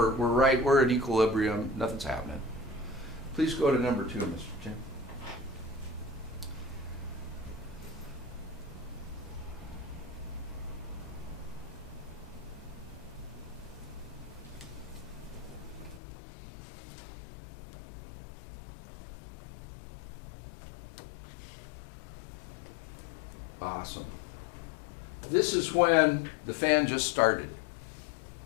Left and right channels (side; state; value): right; drops out; at 16.0 s